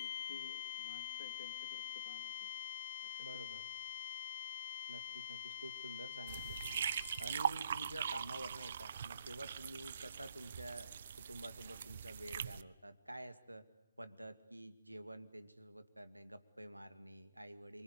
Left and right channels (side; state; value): both; inverted; correlation -0.65